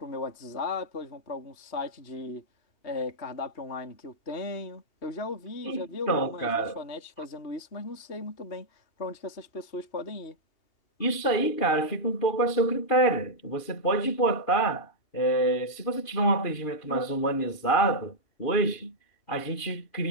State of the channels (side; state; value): right; late; 2.5 ms